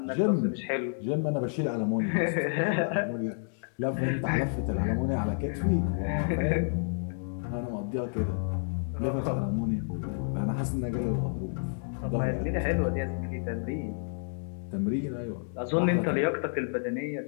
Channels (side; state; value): right; silent; digital silence